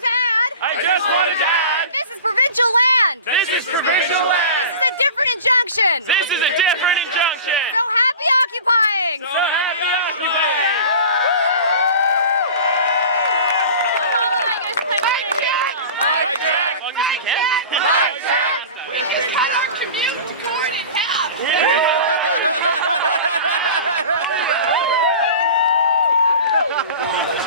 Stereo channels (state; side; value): inverted; both; correlation -0.36